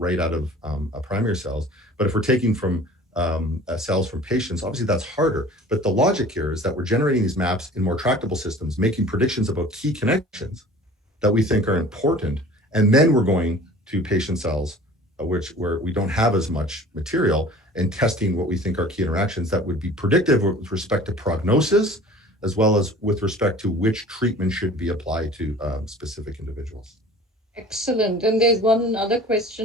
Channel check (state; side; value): normal; both; correlation 0.45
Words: out of primary cells. But if we're taking from cells from patients, obviously that's harder. But the logic here is that we're generating these maps in more tractable systems, making predictions about key connections that we think are important, and then we're going to patient cells, where we don't have as much material, and testing what we think are key interactions that would be predictive with respect to prognosis, as well as with respect to which treatment should be applied to specific individuals. Excellent. And there's one other